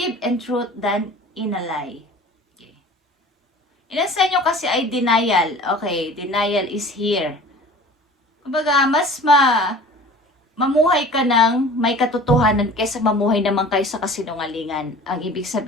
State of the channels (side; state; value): both; normal; correlation 0.43